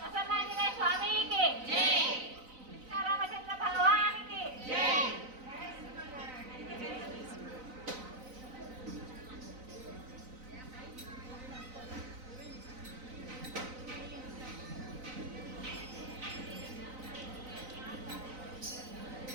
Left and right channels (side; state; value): left; late; 3.9 ms